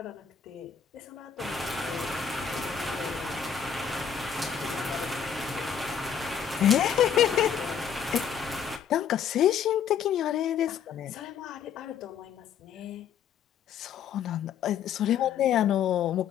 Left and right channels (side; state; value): right; quieter; 7.8 dB